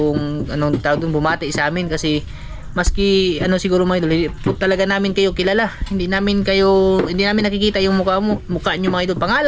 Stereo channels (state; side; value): identical; both; correlation 1.00